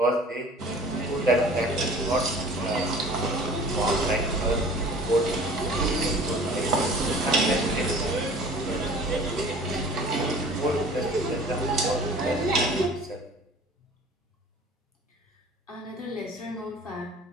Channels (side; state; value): both; normal; correlation 0.46